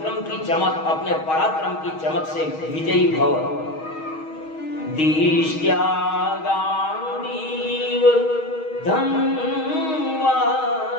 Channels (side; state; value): right; late; 6.3 ms